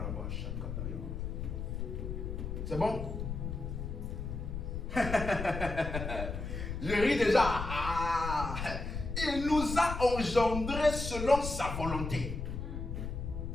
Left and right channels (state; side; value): noise; left; rumble, 5 dB below the sound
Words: C'est bon? Je ris déjà. Ah. Il nous a engendrés selon sa volonté.